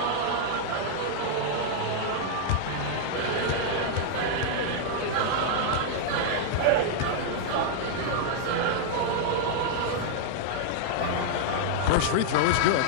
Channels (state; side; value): different; both; correlation -0.01